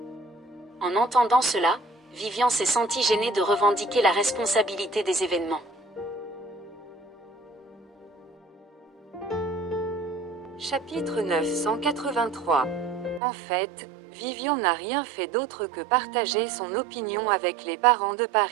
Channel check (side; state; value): left; drops out; at 13.2 s